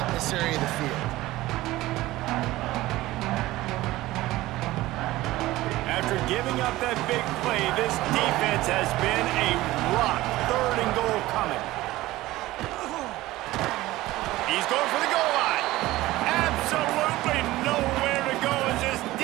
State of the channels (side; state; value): left; quieter; 17.5 dB